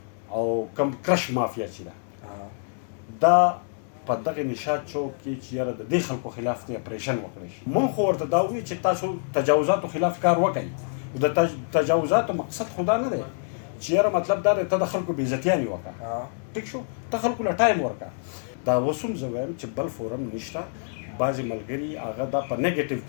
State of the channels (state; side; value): silent; right; digital silence